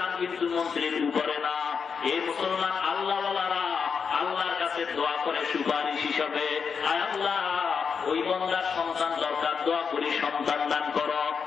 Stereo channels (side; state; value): right; quieter; 6.0 dB